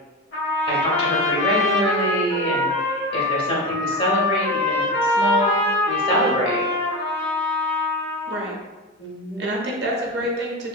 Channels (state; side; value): normal; both; correlation 0.22